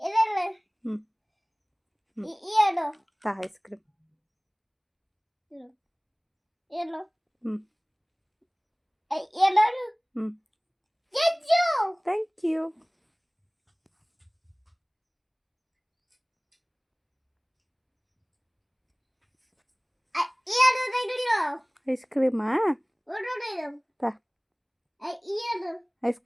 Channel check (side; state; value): both; identical; correlation 1.00